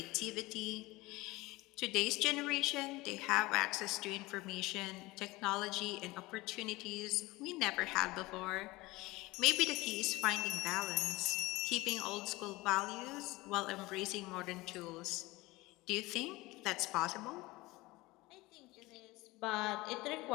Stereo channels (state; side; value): quieter; right; 21.1 dB